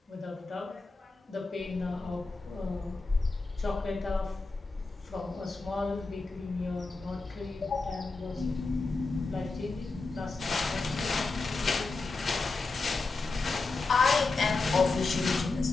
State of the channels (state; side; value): quieter; right; 3.7 dB